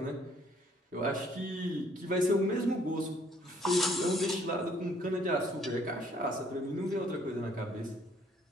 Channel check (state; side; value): normal; both; correlation 0.63